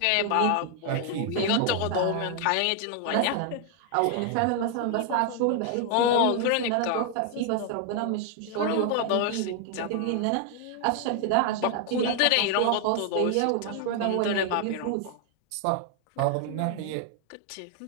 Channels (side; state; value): both; different; correlation 0.00